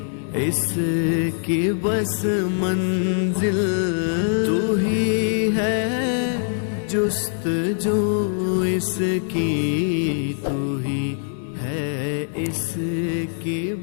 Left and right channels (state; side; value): silent; right; 63 dB below the other